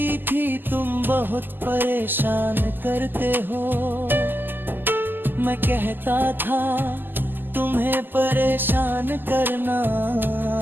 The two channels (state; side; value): late; left; 0.092 ms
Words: थी तुम बहुत परेशान करते हो, मैं कहता था तुम्हें परेशान करना